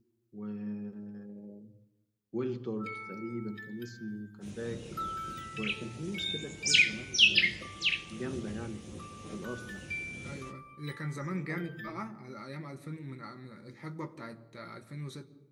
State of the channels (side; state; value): both; identical; correlation 1.00